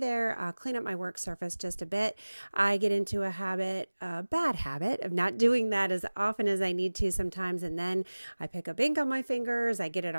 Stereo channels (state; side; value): inverted; both; correlation -1.00